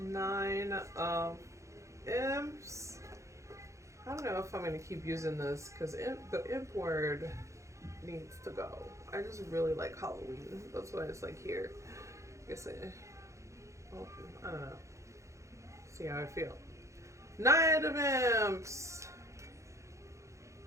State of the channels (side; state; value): left; late; 0.15 ms